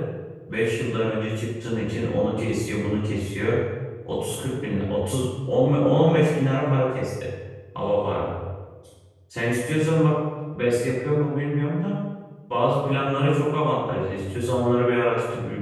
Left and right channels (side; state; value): both; identical; correlation 1.00